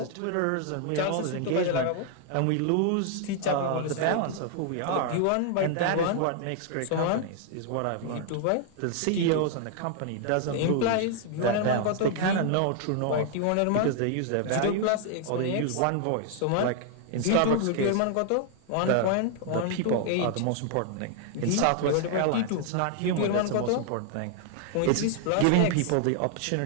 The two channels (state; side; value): different; both; correlation 0.00